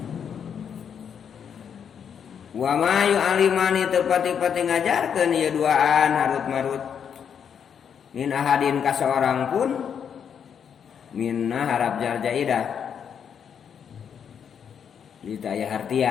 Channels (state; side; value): quieter; right; 7.8 dB